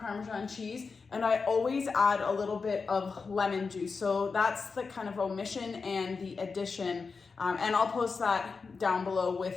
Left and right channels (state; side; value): quieter; right; 4.8 dB